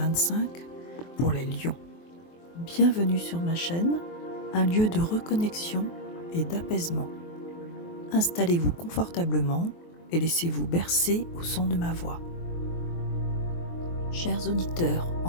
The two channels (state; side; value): late; right; 23 ms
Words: pour les lions. Bienvenue sur ma chaîne, un lieu de reconnexion et d'apaisement. Installez-vous confortablement et laissez-vous bercer au son de ma voix. Chers auditeurs,